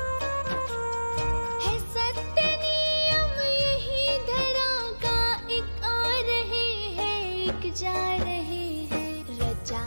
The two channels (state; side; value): inverted; both; correlation -1.00